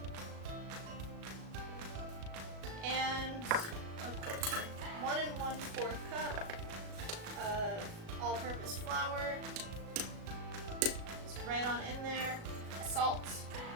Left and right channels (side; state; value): left; late; 37 ms